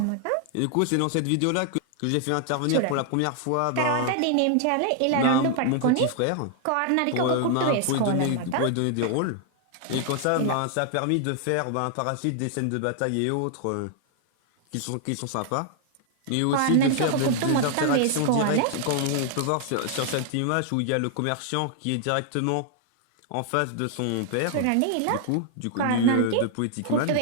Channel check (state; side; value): different; both; correlation 0.00